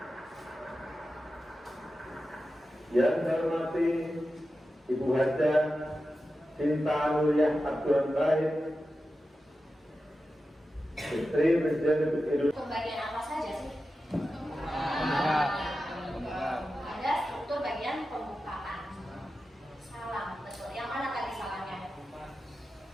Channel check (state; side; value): normal; both; correlation 0.92